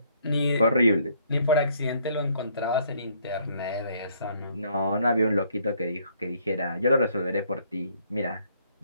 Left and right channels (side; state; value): both; inverted; correlation -0.66